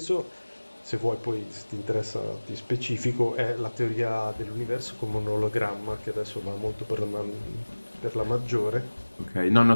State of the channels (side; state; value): both; inverted; correlation -1.00